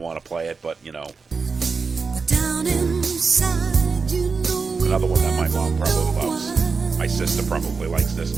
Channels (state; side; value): quieter; left; 4.8 dB